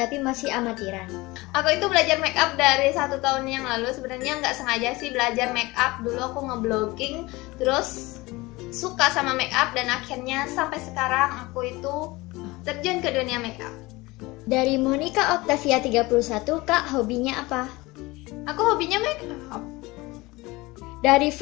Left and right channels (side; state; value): right; quieter; 21.8 dB